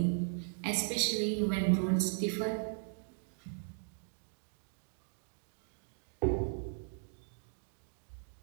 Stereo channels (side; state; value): left; silent; digital silence